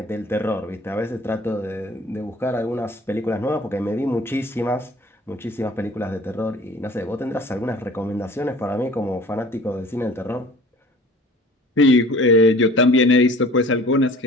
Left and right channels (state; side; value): normal; both; correlation 0.46